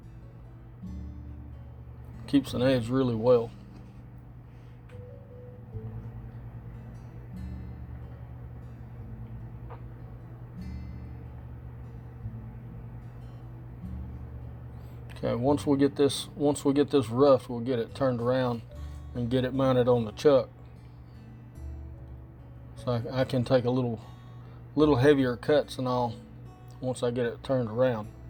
Keeps an edge really well. Okay, once we get this rough, we'll get it turned around and get it mounted on the chuck. So I can take a little heavier cuts and all once I get it turned around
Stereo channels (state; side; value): identical; both; correlation 1.00